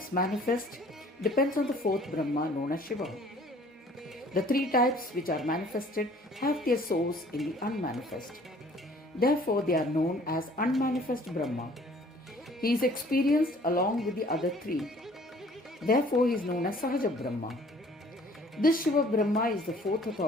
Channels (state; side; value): normal; both; correlation 0.54